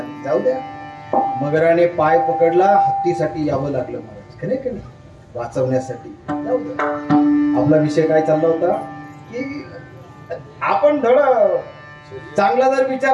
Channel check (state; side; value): identical; both; correlation 1.00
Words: जाऊ द्या, मगराने पाय पकडला, हत्तीसाठी यावं लागलं महाराज, खरे का नाही, वाचवण्यासाठी. जाऊ द्या, आपला विषय काय चालला होता की आपण धड चांगला जर विचार